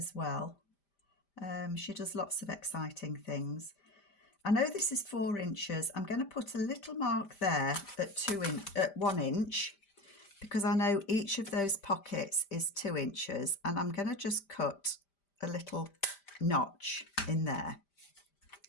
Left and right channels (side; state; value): right; late; 5.0 ms